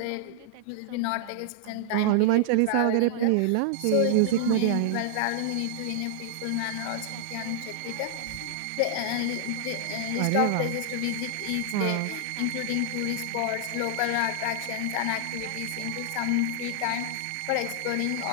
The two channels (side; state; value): both; different; correlation -0.01